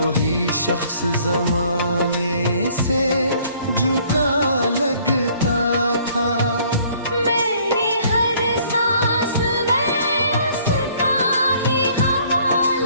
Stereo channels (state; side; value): inverted; both; correlation -0.59